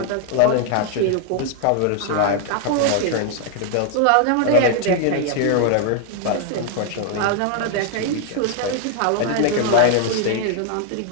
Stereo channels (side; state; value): both; different; correlation 0.00